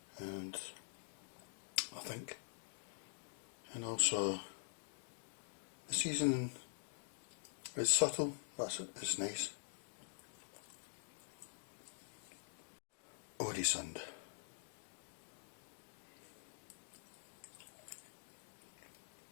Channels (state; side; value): silent; right; digital silence